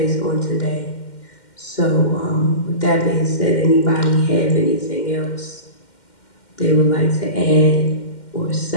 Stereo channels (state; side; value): late; right; 2.1 ms